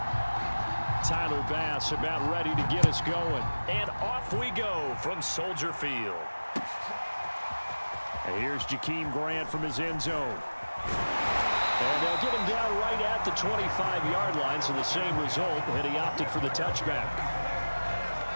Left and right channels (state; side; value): inverted; both; correlation -1.00